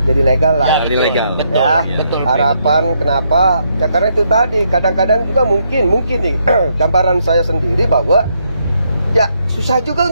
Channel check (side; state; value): both; inverted; correlation -0.76